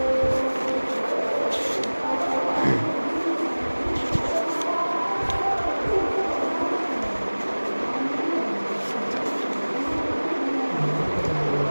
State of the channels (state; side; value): inverted; both; correlation -1.00